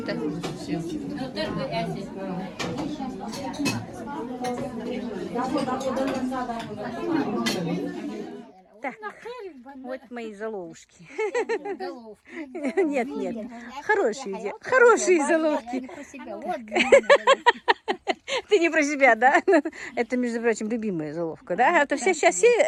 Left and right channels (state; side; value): identical; both; correlation 1.00